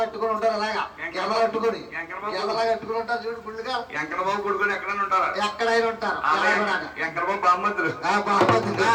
ఉంటారు, అలాగా ఎంకరట్టుకుని కట్టుకుని ఉంటారు చూడు గుళ్ళుగా. ఎంకరబాబు గుడుకొని ఎక్కడైనా ఉంటారు, ఎక్కడైనా ఉంటారు. ఎంకరబాబు బామ్మద్దులు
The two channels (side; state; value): both; identical; correlation 1.00